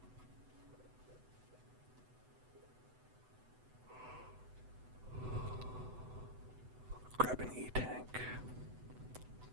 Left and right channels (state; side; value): late; left; 8.0 ms